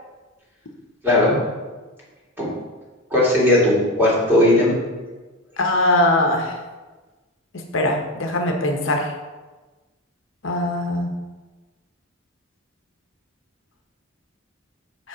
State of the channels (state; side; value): normal; both; correlation 0.17